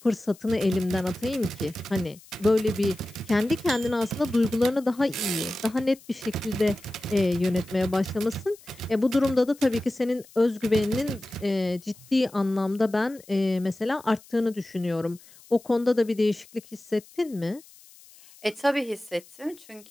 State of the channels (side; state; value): left; noise; hiss, 24 dB below the sound